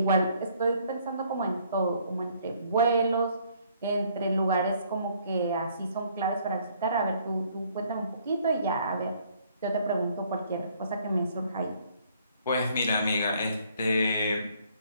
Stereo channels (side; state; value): both; inverted; correlation -0.63